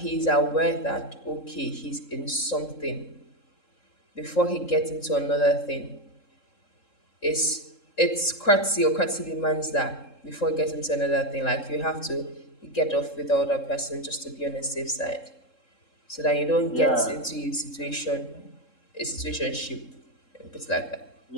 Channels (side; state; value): right; late; 3.7 ms